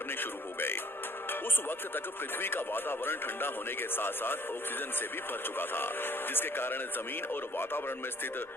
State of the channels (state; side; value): normal; both; correlation 0.56